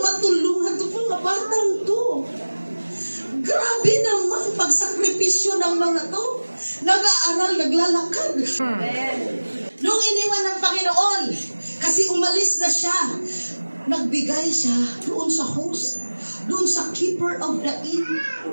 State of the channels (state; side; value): inverted; both; correlation -1.00